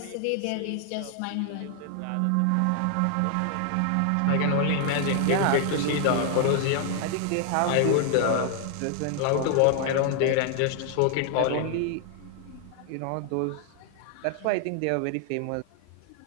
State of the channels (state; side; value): different; both; correlation 0.00